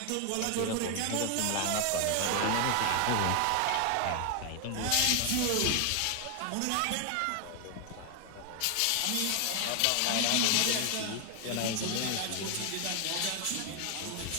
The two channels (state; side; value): different; both; correlation 0.00